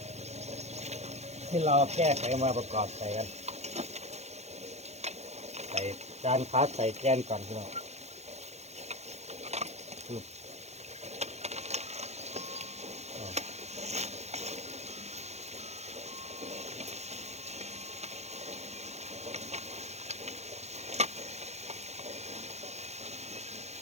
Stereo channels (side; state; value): left; late; 0.32 ms